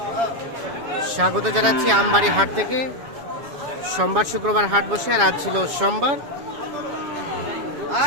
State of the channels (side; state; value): left; late; 7.2 ms